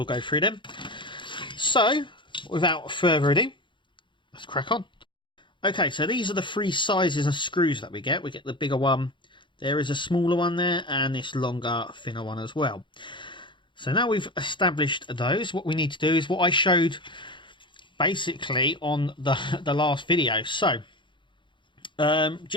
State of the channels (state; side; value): late; right; 0.23 ms